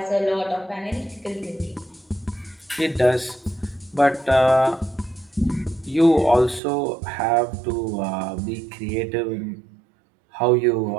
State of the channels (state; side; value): drops out; left; at 6.6 s